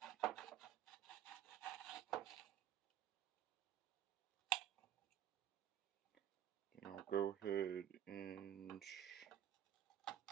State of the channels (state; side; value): quieter; left; 10.8 dB